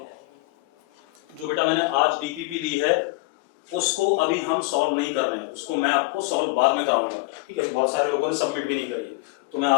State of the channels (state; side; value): quieter; right; 24.0 dB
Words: जो बेटा मैंने आज डीपीपी दी है उसको अभी हम सॉल्व नहीं कर रहे हैं, उसको मैं आपको सॉल्व बाद में कराऊंगा। ठीक है, अभी बहुत सारे लोगों ने सबमिट भी नहीं करी है, तो मैं